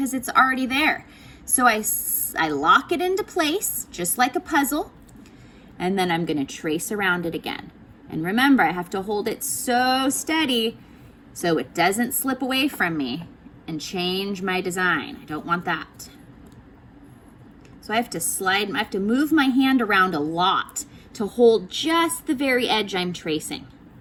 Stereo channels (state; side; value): identical; both; correlation 1.00